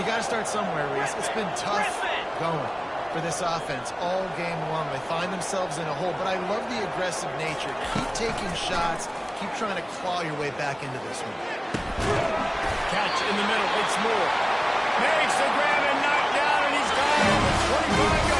you got to start somewhere, Reese. It's been tough going for this offense all game long. They find themselves in a hole, but I love the aggressive nature. Keep taking shots. Keep trying to claw your way back into this one. Catch in the middle. It's Moore. Makes the grab and knocked down, and he's got it at the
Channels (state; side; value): identical; both; correlation 1.00